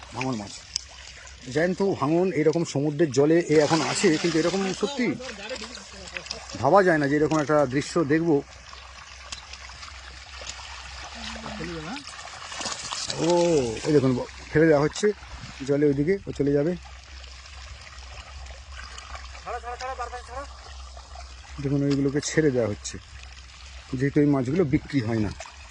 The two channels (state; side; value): identical; both; correlation 1.00